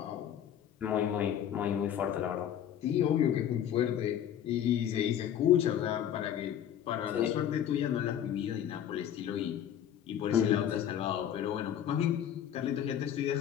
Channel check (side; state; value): right; quieter; 10.0 dB